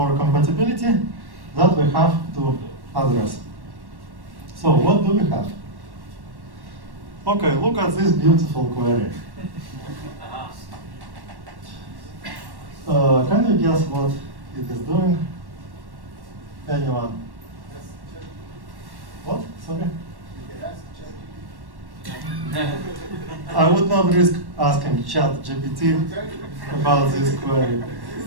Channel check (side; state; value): left; late; 1.1 ms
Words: compatibility that we have to address. So what do we have? Okay, look at this beautiful query. Can you guess what it is doing? Anyone? What? Sorry? I would not risk asking ChatGPT about this query.